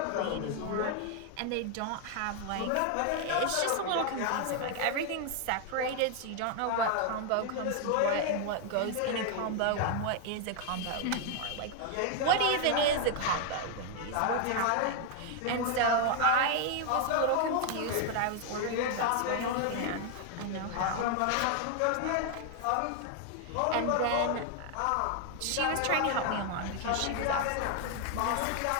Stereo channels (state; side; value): different; both; correlation 0.00